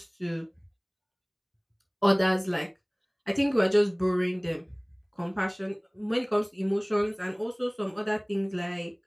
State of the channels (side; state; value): both; identical; correlation 1.00